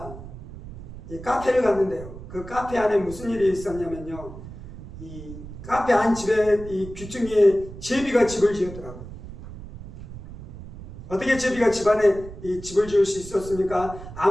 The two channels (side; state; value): right; noise; rumble, 13 dB below the sound